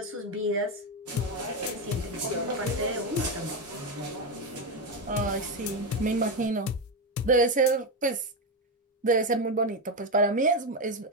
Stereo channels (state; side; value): normal; both; correlation 0.11